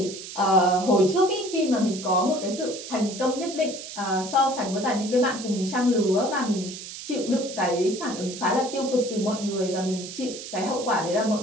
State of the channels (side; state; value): right; noise; hiss, 11 dB below the sound